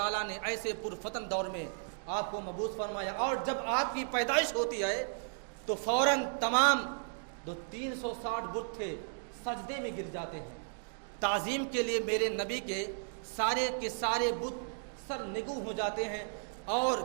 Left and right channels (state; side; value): silent; left; digital silence